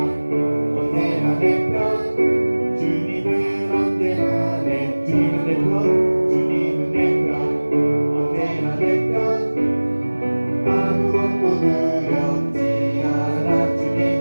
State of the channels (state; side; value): inverted; both; correlation -1.00